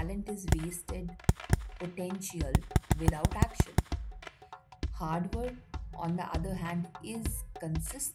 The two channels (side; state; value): both; identical; correlation 1.00